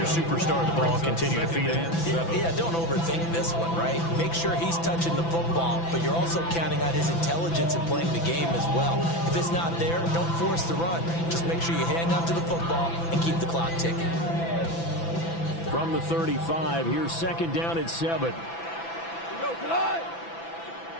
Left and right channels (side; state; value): right; late; 6.0 ms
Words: superstar the ball, continue to feed him. Yeah, don't overthink this one, right? Make sure he's touching the football, but you're also counting on his intelligence in playing the game as well. If it's not there, don't force the run. Just make sure you hang on to the football and keep the clock ticking. From the 35, here's 2nd down and 7. Go, Todd.